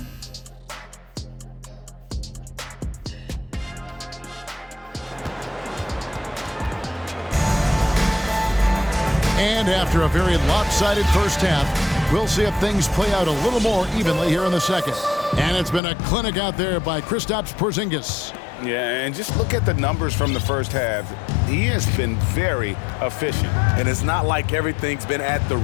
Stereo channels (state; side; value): drops out; right; at 15.8 s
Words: And after a very lopsided first half, we'll see if things play out a little more evenly here in the second. And it's been a clinic out there by Kristaps Porzingis. Yeah, and just look at the numbers from the first half. He has been very efficient. And it's not like everything's been at the